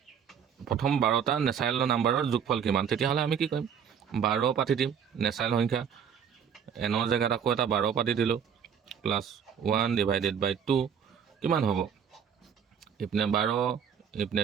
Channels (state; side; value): quieter; left; 7.7 dB